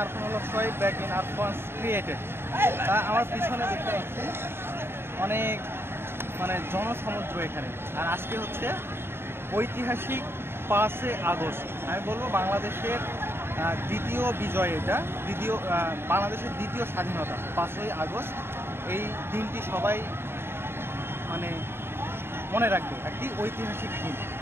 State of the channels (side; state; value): left; late; 0.11 ms